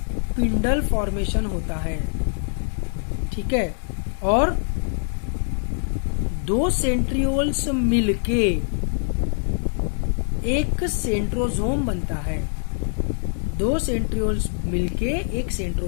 फॉर्मेशन होता है, ठीक है। और 2 सेंट्रियोल्स मिलके एक सेंट्रोजोम बनता है, 2 सेंट्रियोल्स मिलके एक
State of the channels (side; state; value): right; silent; 63 dB below the other